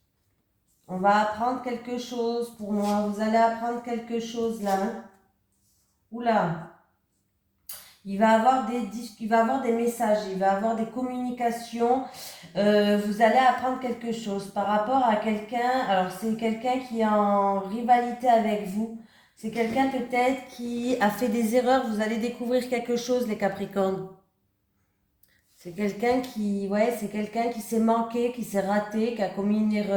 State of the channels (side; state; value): both; identical; correlation 1.00